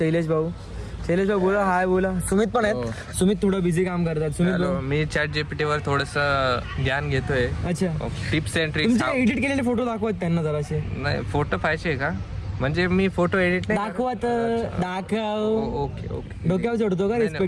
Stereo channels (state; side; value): identical; both; correlation 1.00